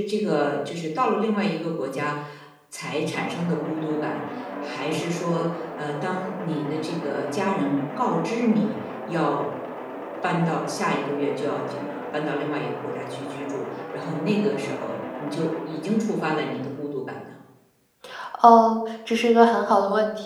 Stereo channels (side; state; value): both; identical; correlation 1.00